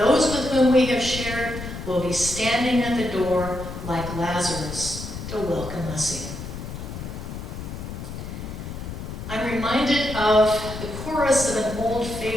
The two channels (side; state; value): left; noise; rumble, 8 dB below the sound